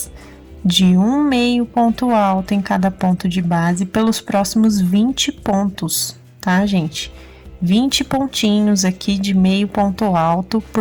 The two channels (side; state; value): both; identical; correlation 1.00